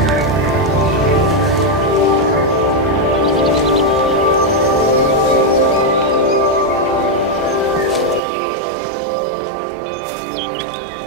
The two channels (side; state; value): left; drops out; at 8.2 s